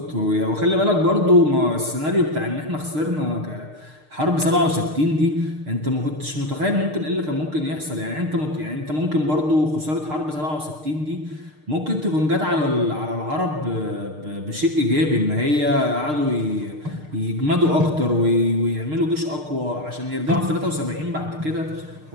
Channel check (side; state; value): left; late; 6.6 ms